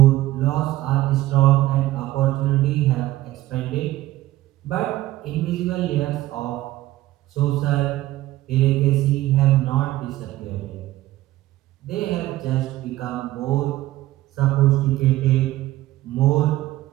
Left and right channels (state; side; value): quieter; left; 16.1 dB